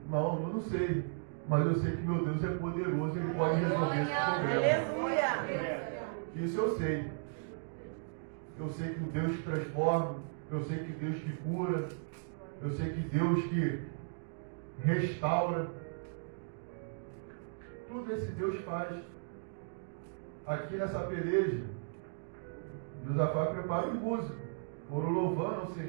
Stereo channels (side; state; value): left; silent; digital silence